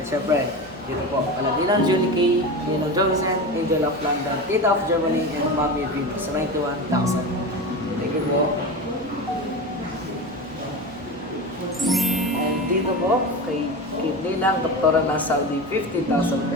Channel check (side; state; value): both; normal; correlation 0.25